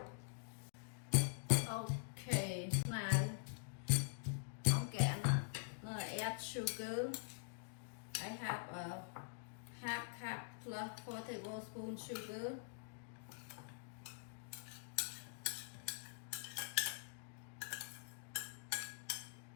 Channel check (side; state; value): right; silent; digital silence